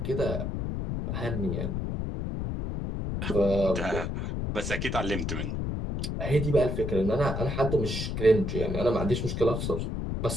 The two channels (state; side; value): noise; left; rumble, 2 dB below the sound